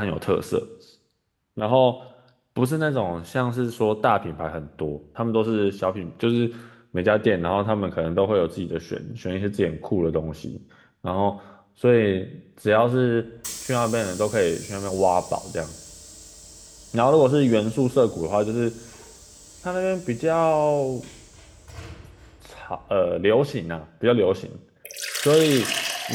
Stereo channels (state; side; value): identical; both; correlation 1.00